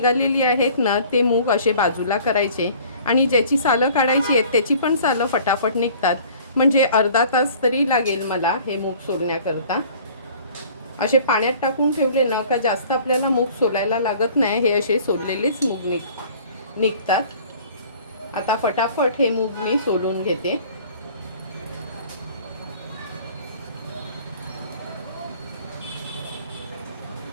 आहेत ना ते मूग असे बाजूला करायचे आणि ज्याची सालं काढायची आहेत त्याची पण सालं फटाफट निघतात, म्हणजे अर्धा तास तरी लागेल मला हे मूग सोलण्याकरता। असे पाण्यात टाकून ठेवले ना का जास्त आपल्याला मूग सोलायला लागत नाही, हे असे सोललेलेच मूग निघतात। आता फटाफट हे मूग मी सोलून घेते।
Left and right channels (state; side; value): inverted; both; correlation -0.50